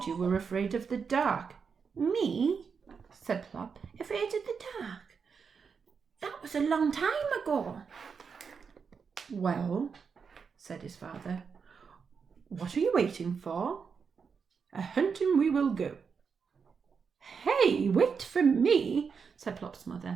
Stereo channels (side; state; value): left; quieter; 5.9 dB